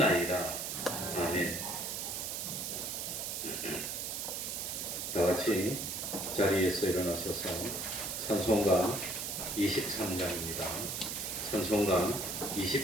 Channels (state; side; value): noise; right; hiss, 3 dB below the sound